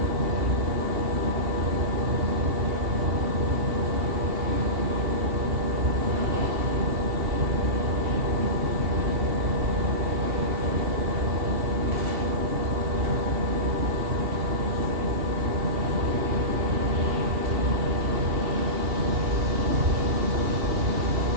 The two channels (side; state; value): left; late; 2.7 ms